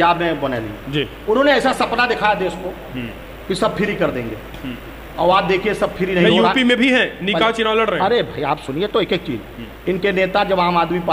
में बने जी, उन्होंने ऐसा सपना दिखाया देश को कि सब फ्री कर देंगे, और आप देखिए सब फ्री नहीं हो रहा। यूपी में भी है, निकाह चुनाव लड़ रहे हैं। अरे भाई आप सुनिए तो एक एक चीज, इनके नेता जब आम आदमी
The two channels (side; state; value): both; identical; correlation 1.00